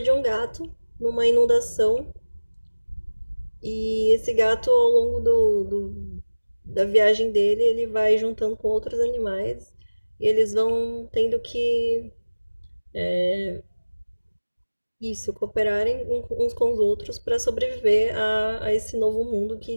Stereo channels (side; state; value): both; inverted; correlation -1.00